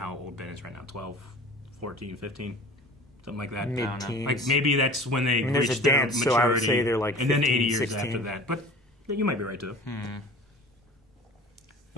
old Ben is right now, 12, 14, 15, something like that. Mid-teens. Like maybe that's when they there's reach a their dance, maturity, so I would say they're like and then 15, 80 years 16. after that. But you might be right too.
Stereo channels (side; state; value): both; normal; correlation 0.42